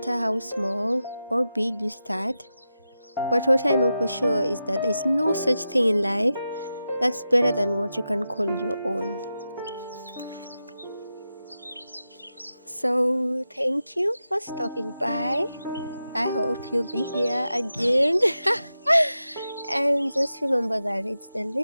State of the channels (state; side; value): inverted; both; correlation -0.91